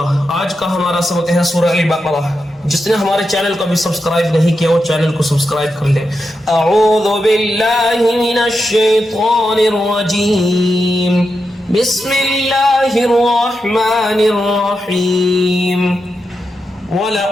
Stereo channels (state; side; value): normal; both; correlation 0.87